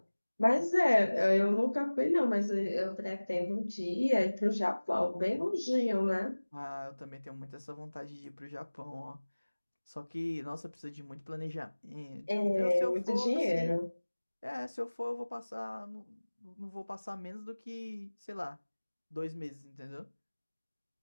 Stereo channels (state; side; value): inverted; both; correlation -1.00